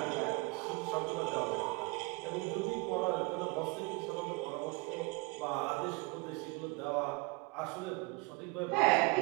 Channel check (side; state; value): left; quieter; 27.7 dB